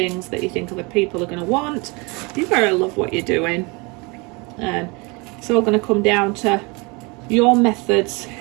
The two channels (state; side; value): quieter; left; 28.2 dB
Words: that you think other people are going to want. You've got to love what you're doing. And it's all going to come down to your methods,